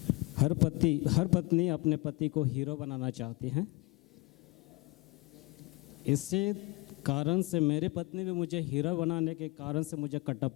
हर पत्नी अपने पति को hero बनाना चाहती है। इसी कारण से मेरी पत्नी भी मुझे हीरो बनाने के कारण से मुझे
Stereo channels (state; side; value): quieter; right; 23.6 dB